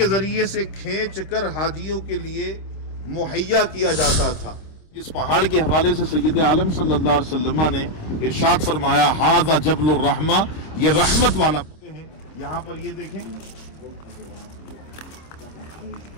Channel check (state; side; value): late; right; 26 ms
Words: ذریعے سے کھینچ کر حاجیوں کے لیے مہیا کیا جاتا تھا، اس پہاڑ کے حوالے سے سید عالم صلی اللہ علیہ وسلم نے ارشاد فرمایا ھذا جبل الرحمہ، یہ رحمت والا ہے. یہاں پر یہ دیکھیں